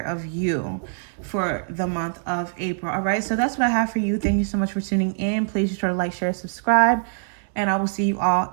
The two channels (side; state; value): left; silent; 63 dB below the other